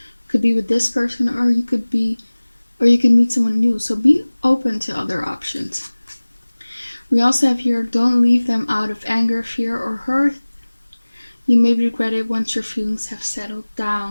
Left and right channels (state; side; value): inverted; both; correlation -1.00